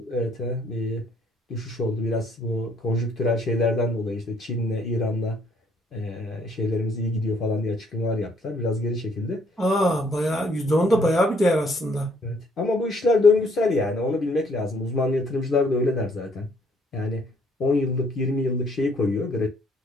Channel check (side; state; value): both; normal; correlation 0.65